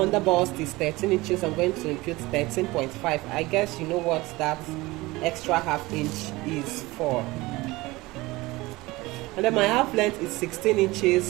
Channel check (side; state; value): left; quieter; 20.9 dB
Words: bust is 13 inches. I'm going to impute 13.5. I guess you know what that extra half inch is for. And then my half length is 16